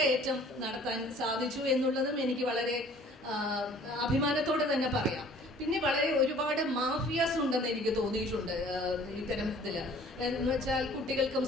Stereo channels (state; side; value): normal; both; correlation 0.52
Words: നടത്താൻ സാധിച്ചു എന്നുള്ളതും എനിക്ക് വളരെ അഭിമാനത്തോടെ തന്നെ പറയാം. പിന്നെ വളരെ ഒരുപാട് മാഫിയാസ് ഉണ്ടെന്ന് എനിക്ക് തോന്നിയിട്ടുണ്ട് ഇത്തരത്തില്. എന്ന് വെച്ചാൽ കുട്ടികൾക്കും